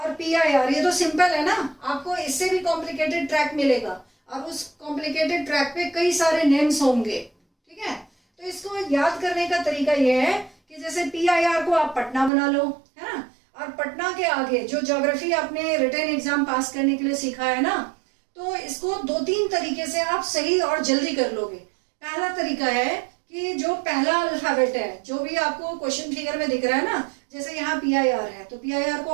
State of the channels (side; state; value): left; drops out; at 12.3 s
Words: PIR, ये तो सिंपल है ना। आपको इससे भी कॉम्प्लिकेटेड ट्रैक मिलेगा, और उस कॉम्प्लिकेटेड ट्रैक पे कई सारे नेम्स होंगे, ठीक है। तो इसको याद करने का तरीका ये है कि जैसे PIR को आप पटना बना लो, है ना, और पटना के आगे जो ज्योग्राफी आपने रिटन एग्जाम पास करने के लिए सीखा है ना, तो इसको 2-3 तरीके से आप सही और जल्दी कर लोगे। पहला तरीका है कि जो पहला अल्फाबेट है, जो भी आपको क्वेश्चन फिगर में दिख रहा है ना, जैसे यहाँ PIR है तो PIR को